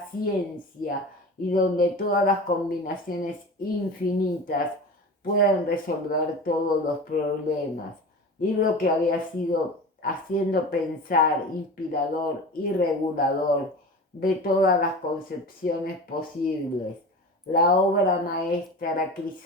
ciencia y donde todas las combinaciones infinitas pueden resolver todos los problemas, libro que había sido haciendo pensar, inspirador y regulador de todas las concepciones posibles, la obra maestra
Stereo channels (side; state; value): both; normal; correlation 0.33